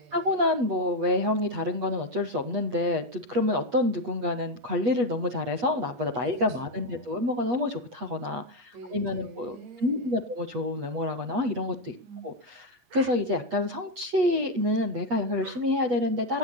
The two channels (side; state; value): left; late; 8.2 ms